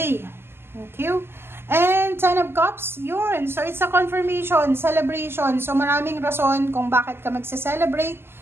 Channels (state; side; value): late; left; 0.12 ms